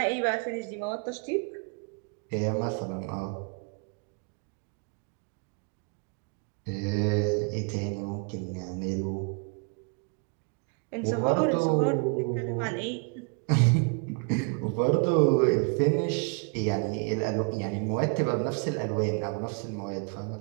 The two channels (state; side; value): quieter; left; 37.2 dB